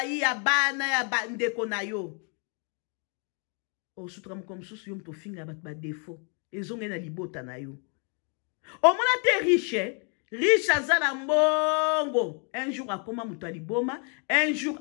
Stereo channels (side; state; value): right; quieter; 39.0 dB